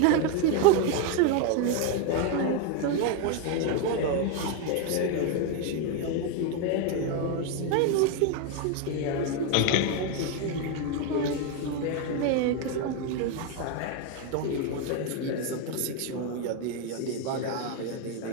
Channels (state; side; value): different; both; correlation 0.01